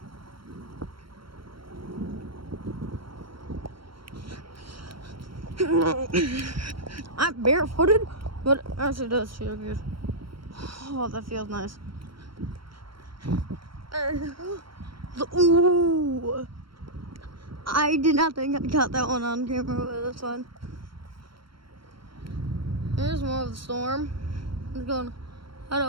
I'm barefooted, but it actually does feel good. Oh, that feels nice. Ooh. I did not think I caught that one on camera, but that's fine. Here's more of the storm. I'm going to head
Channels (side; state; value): left; late; 0.73 ms